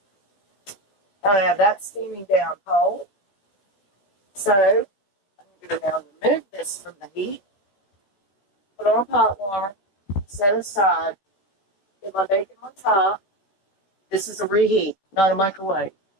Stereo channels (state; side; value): late; right; 16 ms